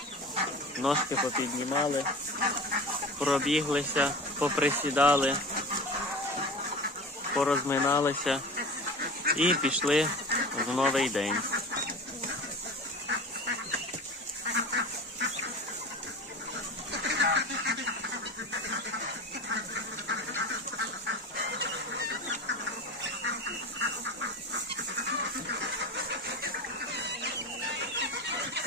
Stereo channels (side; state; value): both; normal; correlation 0.33